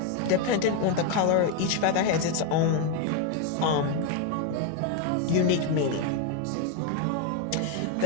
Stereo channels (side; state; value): both; different; correlation 0.02